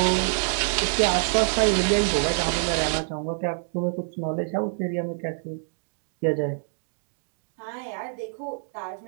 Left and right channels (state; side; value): silent; left; digital silence